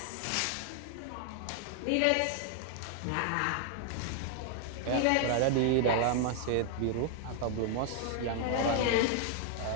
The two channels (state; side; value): different; both; correlation 0.00